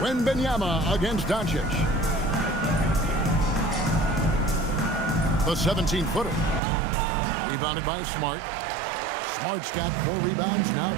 Wembanyama against Doncic. The 17-footer. Rebounded by Smart. Smart's got 4 rebounds now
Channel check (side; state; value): left; drops out; at 6.6 s